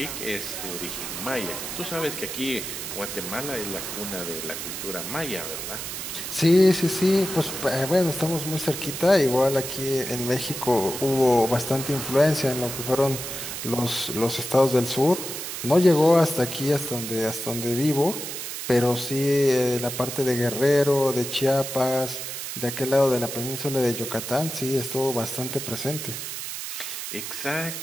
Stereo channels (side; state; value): right; noise; hiss, 6 dB below the sound